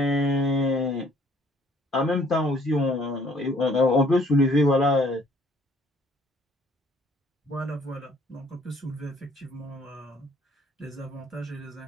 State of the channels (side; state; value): both; normal; correlation 0.60